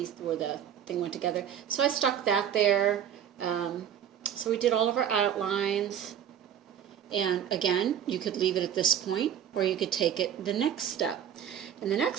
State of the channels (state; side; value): quieter; left; 9.4 dB